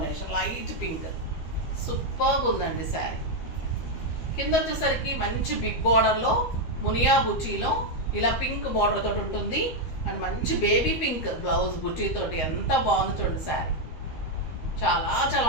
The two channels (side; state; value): right; late; 13 ms